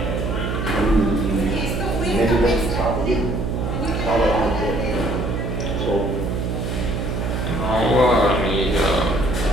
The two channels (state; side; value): noise; right; hum, 2 dB below the sound